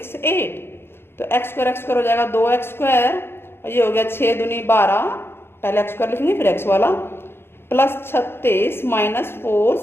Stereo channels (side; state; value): right; late; 0.11 ms